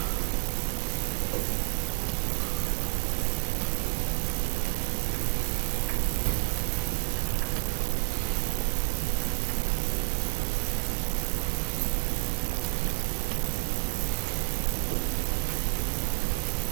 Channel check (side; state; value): left; silent; 58 dB below the other